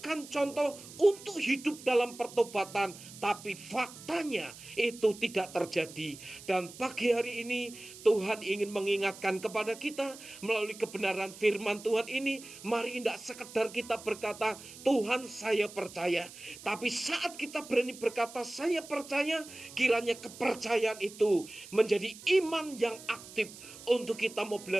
contoh untuk hidup dalam pertobatan. Tapi faktanya itu tidak terjadi. Dan pagi hari ini Tuhan ingin mengingatkan kepada kita melalui kebenaran firman Tuhan ini. Mari tidak sekedar kita berkata Tuhan saya percaya, tapi saat kita berani berkata saya percaya, kiranya kepercayaan itu menjadi iman yang aktif untuk kita mau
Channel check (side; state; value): right; noise; hiss, 16 dB below the sound